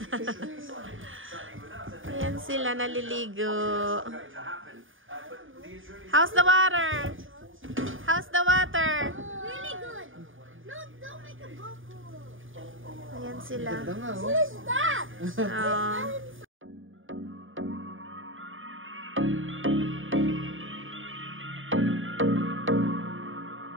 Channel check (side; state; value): left; late; 0.58 ms